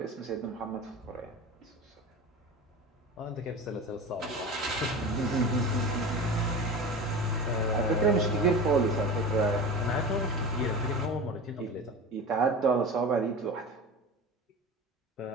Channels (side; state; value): both; normal; correlation 0.31